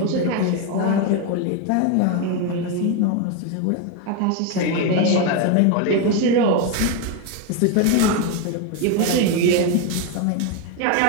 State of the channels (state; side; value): different; both; correlation 0.02